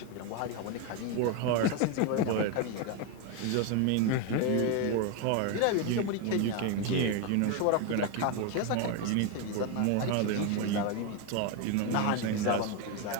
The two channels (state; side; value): different; both; correlation 0.02